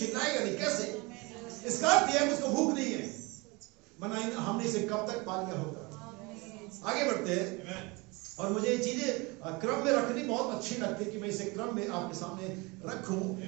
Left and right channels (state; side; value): quieter; left; 26.2 dB